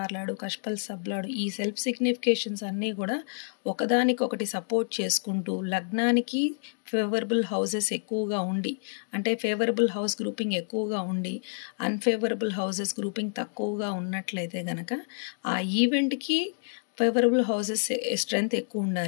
లార్డ్, కష్పల్ సబ్ లార్డ్, ఈ సెల్ఫ్ సిగ్నిఫికేషన్స్ అన్నీ కూడా ఒకదానికొకటి సపోర్ట్ చేసుకుంటూ లగ్నానికి ఫేవరబుల్ హౌసెస్ ఎక్కువగా ఉండి, అంటే ఫేవరబుల్ హౌస్ గ్రూపింగ్ ఎక్కువగా ఉండి అన్ఫేవరబుల్ హౌసెస్ గ్రూపింగ్ తక్కువగా ఉన్నట్లయితే కనుక ఆ ఈవెంట్కి ఫేవరబుల్ హౌసెస్ స్ట్రెంగ్త్ ఎక్కువ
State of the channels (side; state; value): right; silent; digital silence